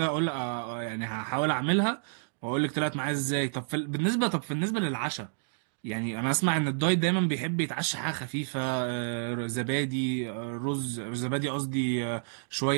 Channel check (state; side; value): silent; left; digital silence